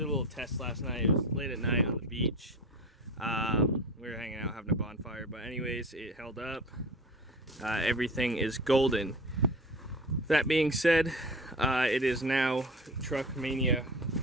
a little test last night. It was late at night on the beach. We were hanging out having a bonfire, but anyways, it held up. Everything is golden. That being said, it is now truck mania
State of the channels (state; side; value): normal; both; correlation 0.34